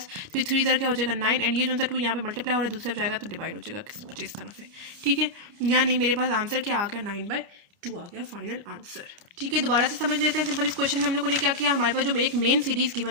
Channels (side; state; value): left; late; 28 ms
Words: 3 3 क्या हो जाएगा 9, एंड ये जो सा 2 यहाँ पे मल्टीप्लाई हो रहा है दूसरे जाएगा तो डिवाइड हो जाएगा कुछ इस तरह से, ठीक है। यानी मेरे पास आंसर क्या आ गया 9/2 आ गया फाइनल आंसर, ठीक है। दोबारा से समझ लेते हैं सिंपल। इस क्वेश्चन में हम लोगों ने क्या किया, हमारे पास जो एक मेन सीरीज